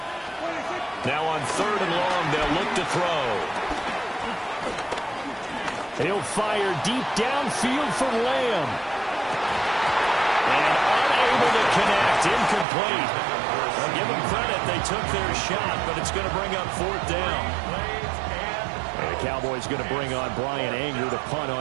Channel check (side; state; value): left; drops out; at 12.7 s